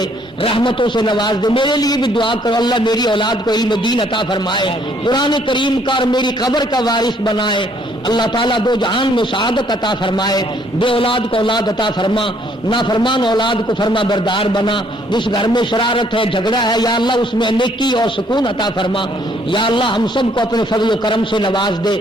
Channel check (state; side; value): normal; both; correlation 0.65